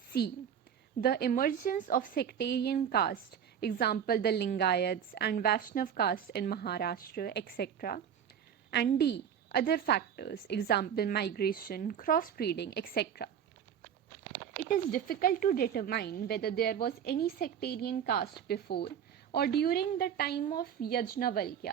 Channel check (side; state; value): left; quieter; 8.5 dB